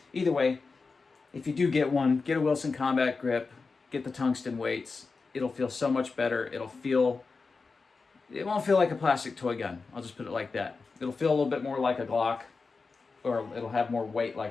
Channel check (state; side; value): quieter; right; 4.4 dB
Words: either way, if you do get one, get a Wilson Combat grip, get the tungsten weights. It'll feel so much better. It won't feel like a plastic toy gun. I'll just put it like that. It'll feel a little bit more like a Glock, or it'll have more weight